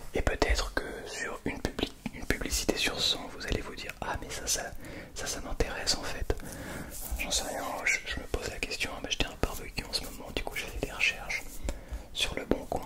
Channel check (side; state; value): both; identical; correlation 1.00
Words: et peut-être que sur une publicité sur 100, vous allez vous dire ah mais ça m'intéresse en fait. J'en sais rien, je me pose la question, j'étais un barbecue en ce moment, du coup j'ai fait des recherches sur le bon coin,